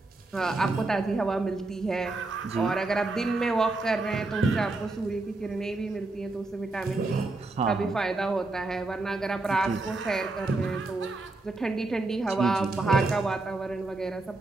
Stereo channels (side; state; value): left; quieter; 3.2 dB